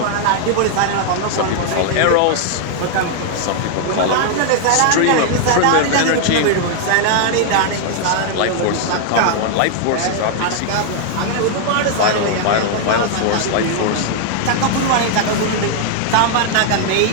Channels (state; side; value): different; both; correlation 0.00